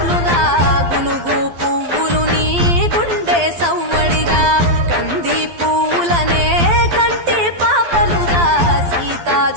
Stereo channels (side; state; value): left; late; 12 ms